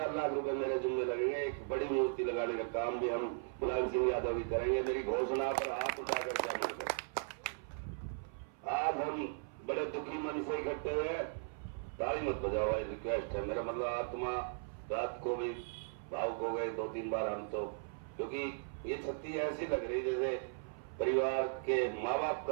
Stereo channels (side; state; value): left; silent; 53 dB below the other